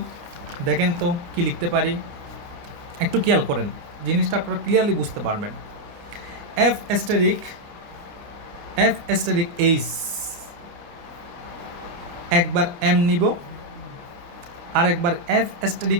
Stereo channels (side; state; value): left; late; 29 ms